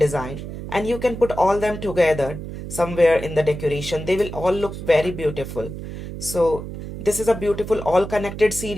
and you can put all them together somewhere in the decoration. They will all look very beautiful. So this is a beautiful all connected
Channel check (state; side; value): noise; right; hum, 9 dB below the sound